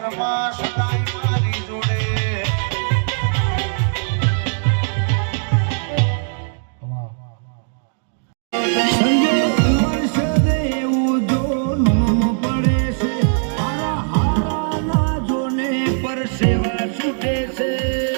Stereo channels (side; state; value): left; silent; digital silence